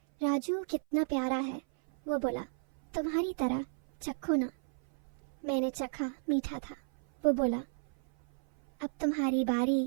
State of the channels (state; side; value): silent; left; 55 dB below the other